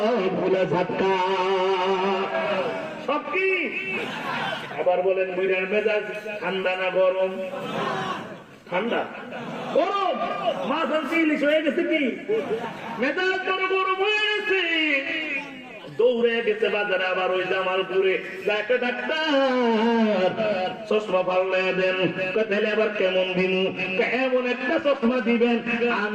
ধাক্কা, সব কি। আবার বলেন বুড়ার মেজাজ ঠান্ডা না গরম? ঠান্ডা। গরম। মাছ আনছি, ইলিশ হয়ে গেছে কি মেজাজ বড় গরম হয়ে গেছে। দৌড়ে গেছে বাজারে, আবার ওই জামালপুরে যাকে ডাক্তার চশমা পাল্লে দেন। তাহলে আবার কেমন দিন? এমন একটা চশমা দিবেন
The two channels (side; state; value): both; identical; correlation 1.00